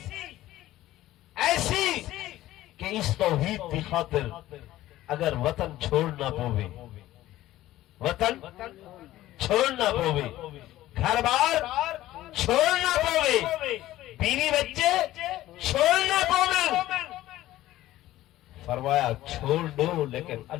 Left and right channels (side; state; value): right; quieter; 15.2 dB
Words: ایسی کہ اس توحید کی خاطر اگر وطن چھوڑنا پوے، وطن چھوڑنا پوے، گھر بار چھوڑنا پوے، بیوی بچے چھوڑنا پوے، فرمایا چھوڑ دو لیکن